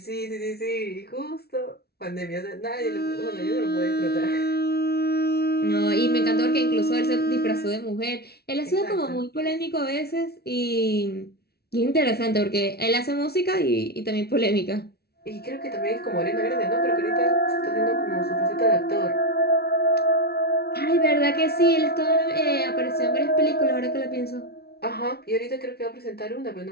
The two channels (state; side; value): late; right; 0.46 ms